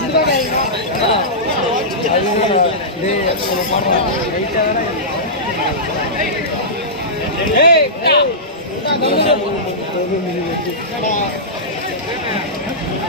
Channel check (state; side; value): normal; both; correlation -0.16